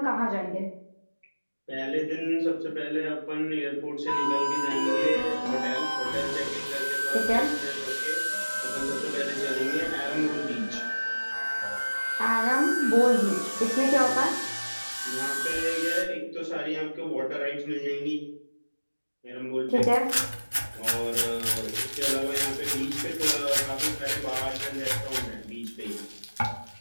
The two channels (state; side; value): inverted; both; correlation -1.00